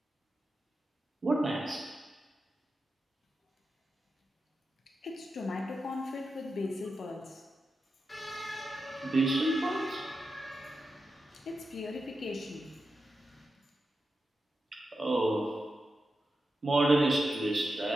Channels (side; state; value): both; normal; correlation 0.89